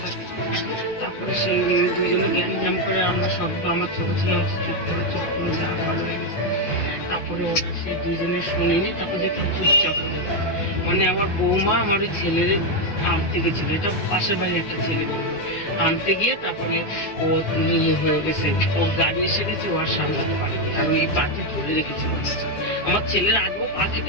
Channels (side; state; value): right; late; 9.7 ms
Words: থাকে। তারপরে সেই দুইজনে জ্ঞান জ্ঞান করে আমরা সব, আমার ছোট ছেলে চুপ করে যা ভালো হয়ে গেছে। তারপরে ওরা সেই দুইজনে শুনিনি, তারপরে একটা চুপচাপ হয়ে গেছে। মানে আমার বৌমা আমার ওই ছেলের আনতে গেছিল, এটা পাশের বাড়ির একটা ছেলে বলবো, আনতে গিয়ে তারপরে ও ইয়ে হয়ে গেছে, ওর গাড়ি এসে গেছে, ও আর সামলাতে পারেনি, আর ওই পাটি ধরে রেখেছিল। আমার ছেলের আগেও পা